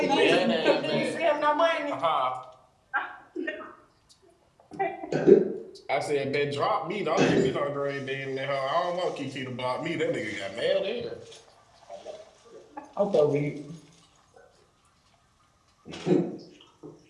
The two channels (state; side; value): identical; both; correlation 1.00